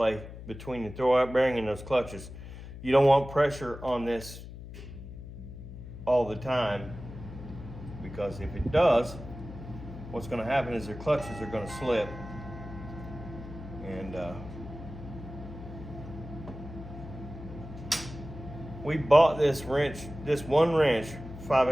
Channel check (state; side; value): noise; left; hum, 12 dB below the sound